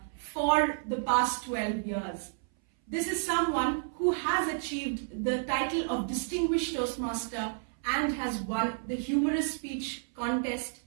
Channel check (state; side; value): silent; left; 57 dB below the other